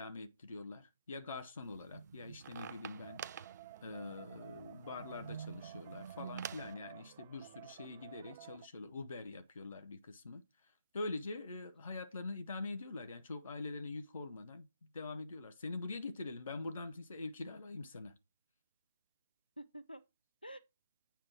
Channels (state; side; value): inverted; both; correlation -0.76